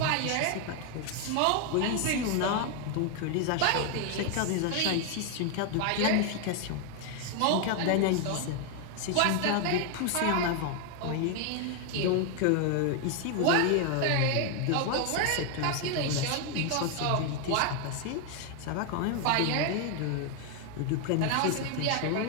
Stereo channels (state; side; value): different; both; correlation 0.01